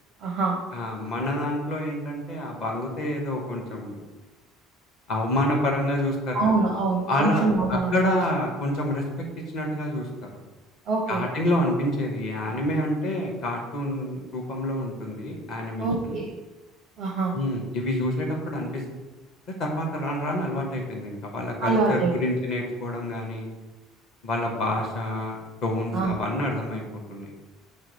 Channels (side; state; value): both; normal; correlation 0.46